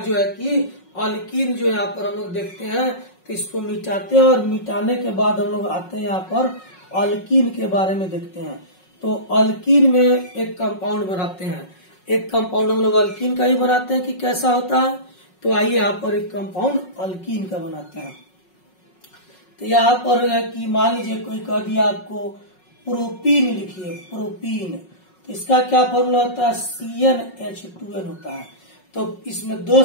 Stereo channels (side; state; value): right; late; 5.5 ms